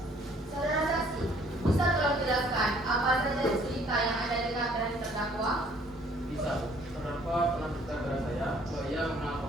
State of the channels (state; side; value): normal; both; correlation 0.59